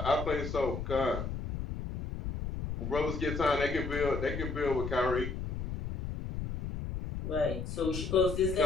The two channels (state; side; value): noise; left; rumble, 5 dB below the sound